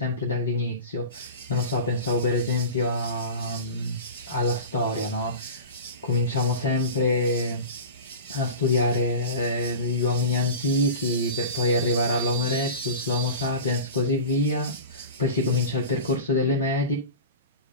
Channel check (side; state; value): both; inverted; correlation -0.32